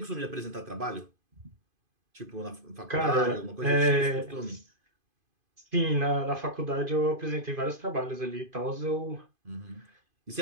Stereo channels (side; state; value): left; late; 2.5 ms